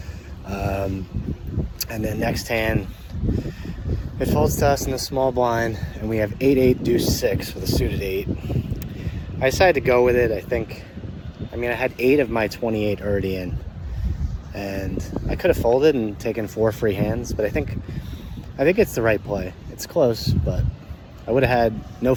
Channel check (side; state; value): both; identical; correlation 1.00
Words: And then next hand, it folds to us in the small blind, and we have 8-8 deuce 6 with a suited 8. I decided to go with it. I had 8 of my 28 already in, and I could have folded and taken 4 free hands, but I think it's the right play. It's close, but I would have had no